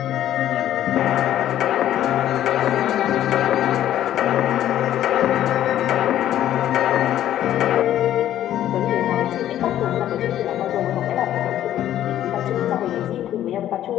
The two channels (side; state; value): right; quieter; 12.0 dB